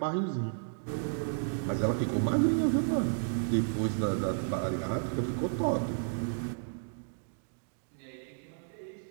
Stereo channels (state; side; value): silent; left; digital silence